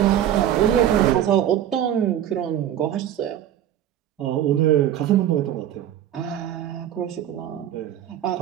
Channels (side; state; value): left; quieter; 11.1 dB